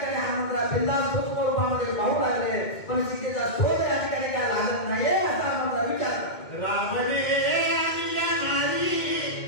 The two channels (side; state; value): right; late; 2.2 ms